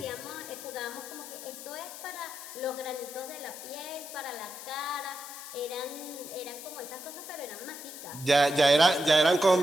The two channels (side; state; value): left; noise; hiss, 12 dB below the sound